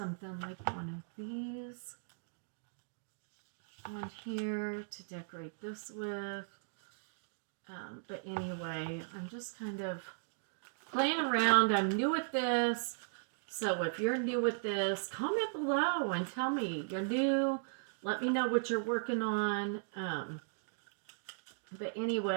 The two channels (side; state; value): left; silent; digital silence